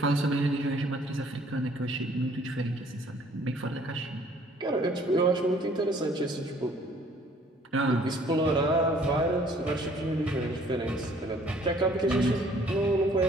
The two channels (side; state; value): both; normal; correlation 0.58